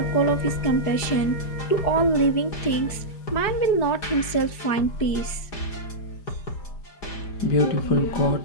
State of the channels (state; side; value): late; right; 4.9 ms